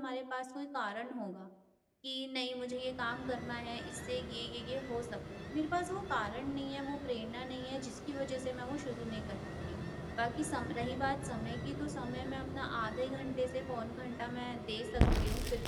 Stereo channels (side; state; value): both; identical; correlation 1.00